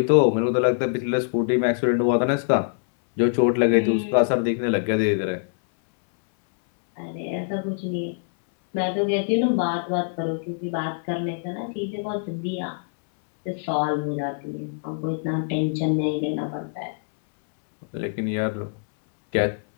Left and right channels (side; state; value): right; silent; 63 dB below the other